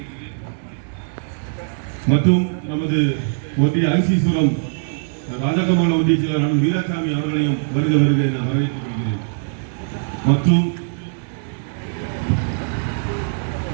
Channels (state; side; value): silent; left; digital silence